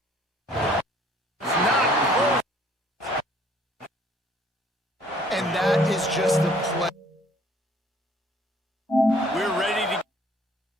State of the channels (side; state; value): both; normal; correlation 0.58